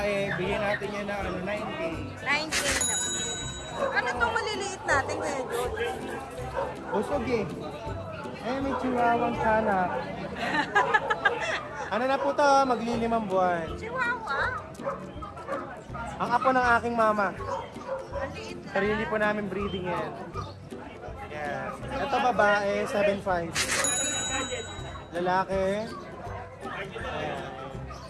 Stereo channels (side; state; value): both; identical; correlation 1.00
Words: bigyan natin yan na 9K. 9K na. Ano itong maliliit natin ngayon? Busog eh. May chihuahuang kanak. Ano na po to? Maglilimang buwan. Chihuahua. Ang apo ng aking mama. Ang liit na. Sarili po namin breeding yan. Yes. Ito babae, 7'5". Lalaki. Ayan.